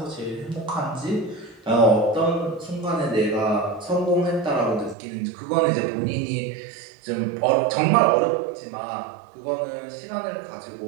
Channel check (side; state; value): left; drops out; at 5.0 s